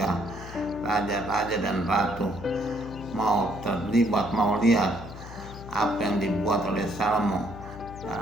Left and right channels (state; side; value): noise; left; hum, 13 dB below the sound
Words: raja-raja dan ratu mau terlibat, mau lihat apa yang dibuat oleh Salomo